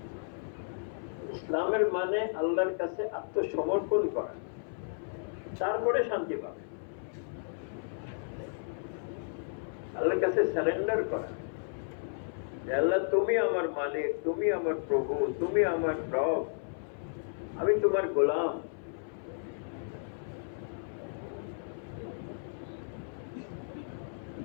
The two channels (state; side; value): silent; right; 56 dB below the other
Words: ইসলামের মানে আল্লাহর কাছে আত্মসমর্পণ করা, তারপরে শান্তি পাবে। আল্লাহর কাছে সারেন্ডার করা, আল্লাহ তুমি আমার মালিক, তুমি আমার প্রভু, তুমি আমার রব, আমি তোমার গোলাম।